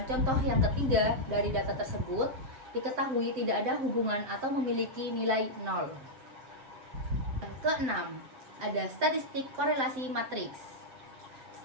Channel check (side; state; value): left; late; 7.7 ms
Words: contoh yang ketiga dari data tersebut, diketahui tidak ada hubungan atau memiliki nilai 0. Keenam, ada statistik korelasi matriks.